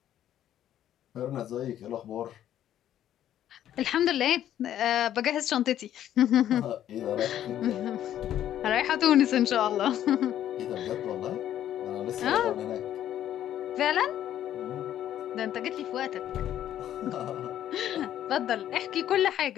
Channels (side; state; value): right; quieter; 11.4 dB